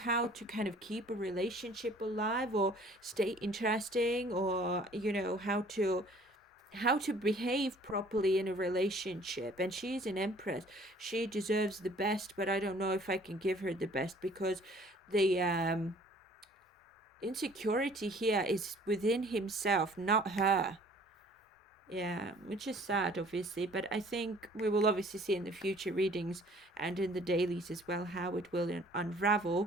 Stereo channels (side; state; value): both; normal; correlation 0.54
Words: to kind of keep a relationship alive or stay interesting, or how to behave properly in a relationship. And she's an Empress. She deserves the best, but I don't know if I can give her the best, because the insecurity here is within himself, not her. Yeah, which is sad, obviously, but I think we will obviously see in the future readings and in the dailies as well how it will